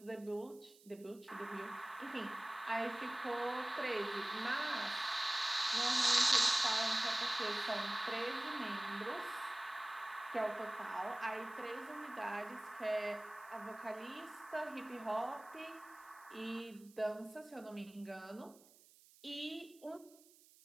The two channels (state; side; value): noise; right; hiss, 25 dB below the sound